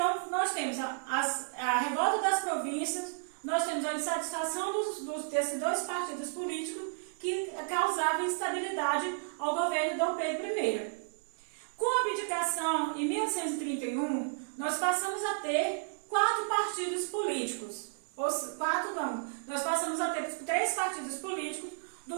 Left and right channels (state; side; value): silent; left; 56 dB below the other